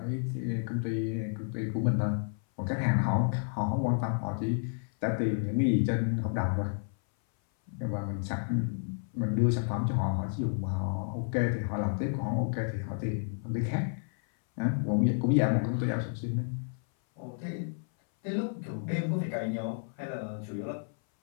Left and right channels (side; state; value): right; silent; 57 dB below the other